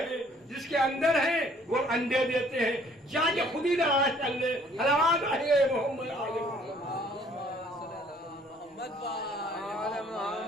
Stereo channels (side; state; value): both; normal; correlation 0.59